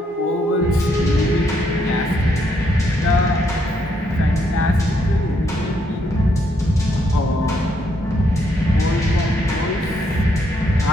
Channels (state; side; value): normal; both; correlation 0.74